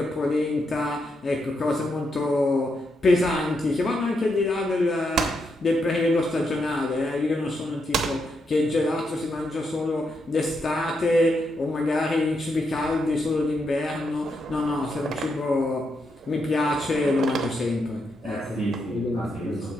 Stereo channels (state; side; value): normal; both; correlation 0.81